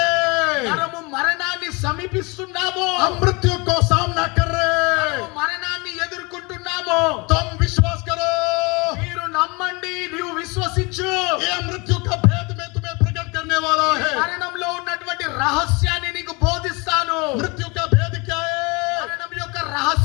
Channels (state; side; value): quieter; right; 27.7 dB